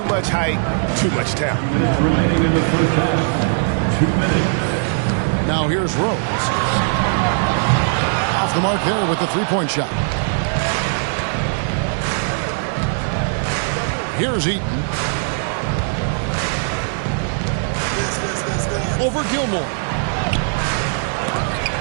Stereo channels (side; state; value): left; silent; 64 dB below the other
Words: much height, too much talent. 2 minutes remaining in the first half. 2 minutes. Now here's Rose. Off the mark there with the three-point shot. Here's Eaton. Over Gilmore.